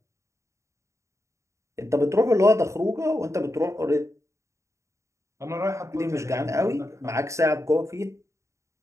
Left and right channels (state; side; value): late; left; 0.14 ms